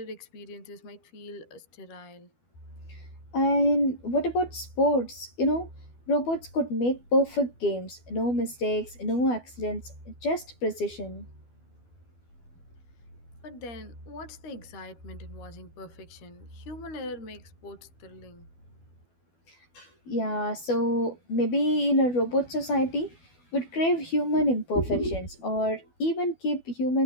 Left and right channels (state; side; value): late; right; 12 ms